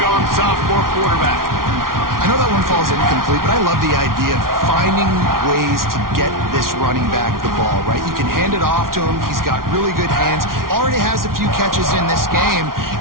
sophomore quarterback. I know that one falls incomplete, but I love the idea of finding ways to get this running back the ball, right? You can hand it off to him. He's got really good hands. Already has a few catches in this game.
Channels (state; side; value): late; left; 0.92 ms